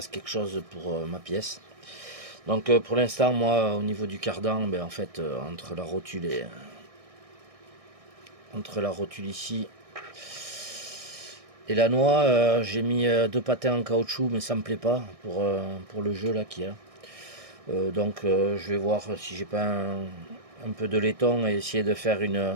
quelque chose pour ma pièce. Donc pour l'instant, moi, au niveau du cardan, ben, en fait, entre la rotule ici et la noix, j'ai mis deux patins en caoutchouc, mais ça me plaît pas pour le jeu là qu'il y a. Donc je vais voir si j'ai pas un peu de laiton et essayer de faire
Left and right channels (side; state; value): left; late; 1.6 ms